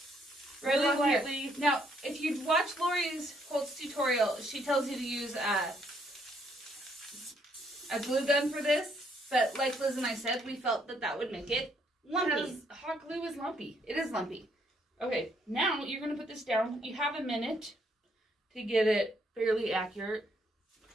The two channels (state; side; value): normal; both; correlation 0.70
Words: really lightly. Now, if you watch Lori's quilts tutorial, she tells you to use a glue gun for this. But like Liz and I said, we felt that would make it lumpy. Because hot glue is lumpy. It is lumpy. Okay, now you're going to put this down. You have a minute to get it fairly accurate.